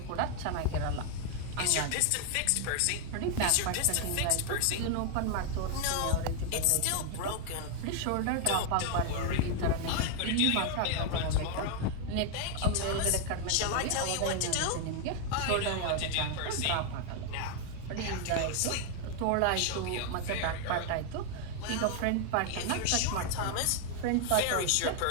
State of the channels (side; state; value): both; different; correlation 0.00